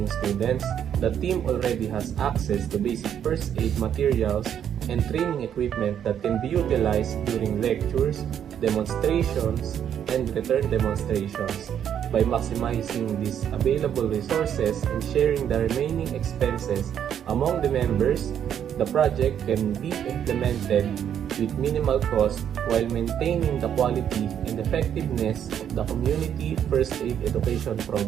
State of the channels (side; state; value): left; quieter; 9.2 dB